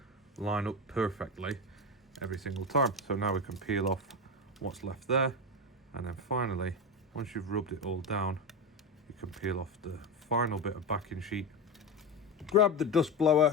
line up perfectly every single time. So now we can peel off what's left there, and then finally, once you've rubbed it all down, you can peel off the final bit of backing sheet. Grab the dust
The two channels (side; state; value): both; normal; correlation 0.18